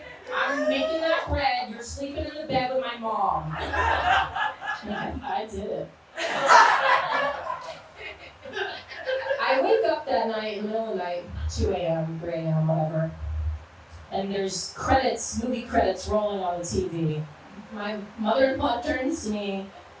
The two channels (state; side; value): identical; both; correlation 1.00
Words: I'm making that bread. You're sleeping in the bed with my mom. I did it. I wake up that night, in the middle of the night, 2 a.m., 3 a.m., whatever. And there's movie credits rolling on the TV. My mother-in-law turns to me